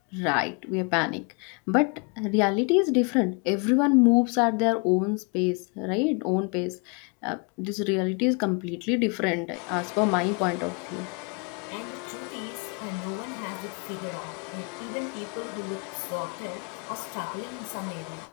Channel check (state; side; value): quieter; right; 34.1 dB